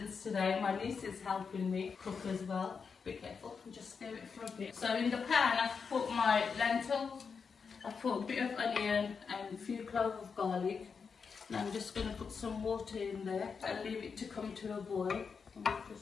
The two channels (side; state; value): right; quieter; 5.7 dB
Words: today. My niece is helping me cook as well. Be careful, just stir it for a bit. So in the pan I've put my lentils, I've put a bit of onion and a few cloves of garlic. And I'm just going to put some water in there and leave it to come to a boil.